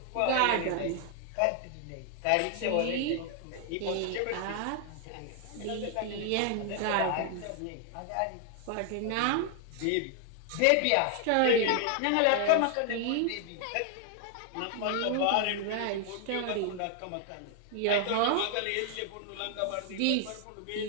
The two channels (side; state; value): both; different; correlation 0.00